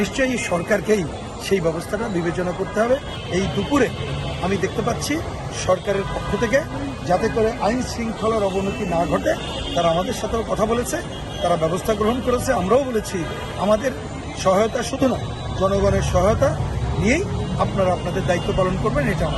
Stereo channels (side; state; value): both; identical; correlation 1.00